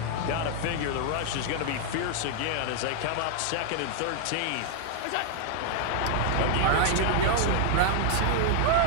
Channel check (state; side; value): different; both; correlation 0.00